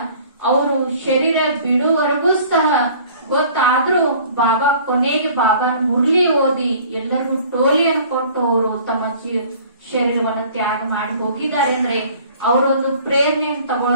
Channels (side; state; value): both; inverted; correlation -0.50